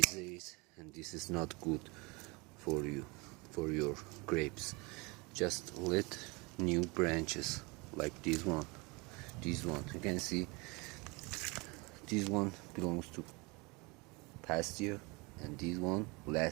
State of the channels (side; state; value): left; quieter; 27.3 dB